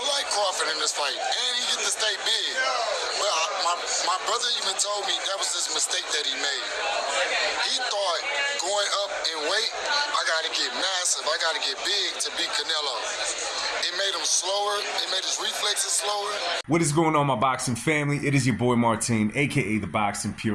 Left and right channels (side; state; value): both; identical; correlation 1.00